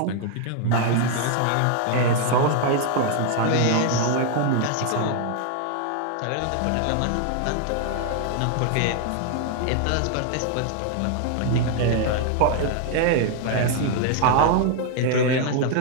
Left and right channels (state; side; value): different; both; correlation 0.00